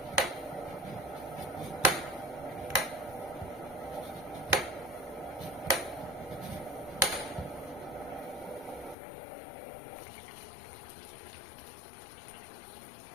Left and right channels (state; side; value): drops out; right; at 9.0 s